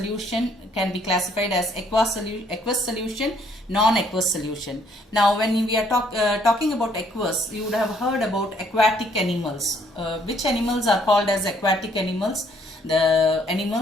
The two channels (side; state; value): both; normal; correlation 0.65